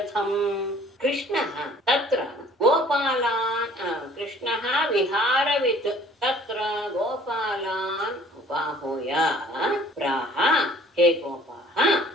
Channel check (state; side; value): normal; both; correlation 0.53